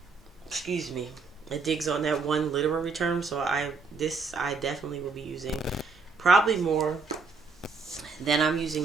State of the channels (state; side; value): quieter; left; 4.5 dB